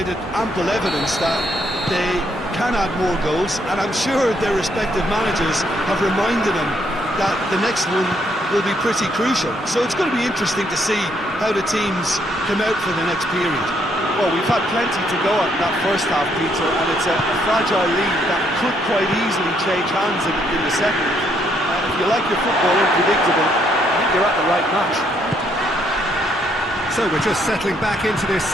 ample evidence that they can add more goals, and I'm sure their respective managers have reminded them that the next one will be pretty crucial. So it's going to be interesting to see how the teams come out for the next period. Well, we've had plenty to go at that first half, Peter, and it's a fragile lead that could quite easily change hands in the second. If you like your football unpredictable, I think you're at the right match. So we're just settling back into this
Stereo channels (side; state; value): both; normal; correlation 0.72